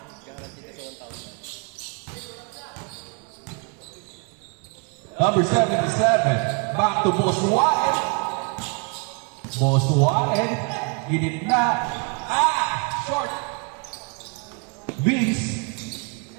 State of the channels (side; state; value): left; quieter; 34.4 dB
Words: Number 77, back to Boss Warren. Boss Warren, ginitna. Short. Wins.